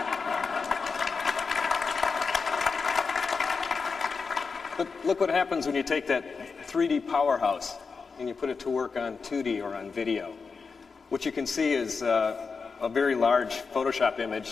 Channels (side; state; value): right; quieter; 5.0 dB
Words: But look what happens when you take that 3D powerhouse and you put it to work on 2D or on video. What you can see is a very large Photoshop